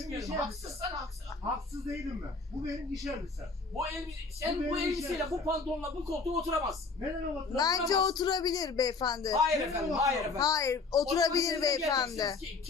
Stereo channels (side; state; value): right; quieter; 4.2 dB